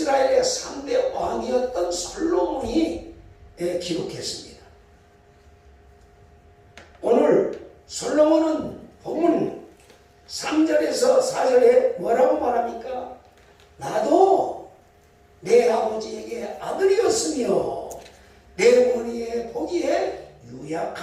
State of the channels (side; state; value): both; identical; correlation 1.00